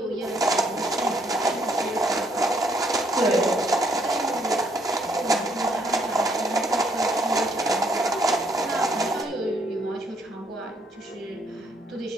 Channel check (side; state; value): both; normal; correlation 0.69